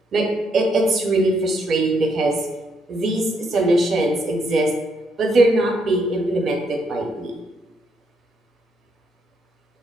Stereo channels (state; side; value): normal; both; correlation 0.75